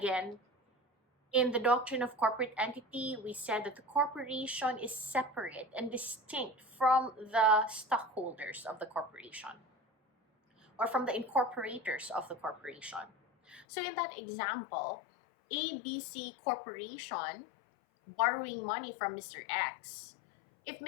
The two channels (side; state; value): right; drops out; at 13.7 s